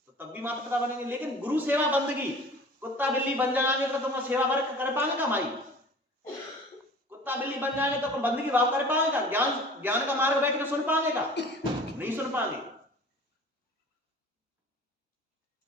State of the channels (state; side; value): normal; both; correlation 0.44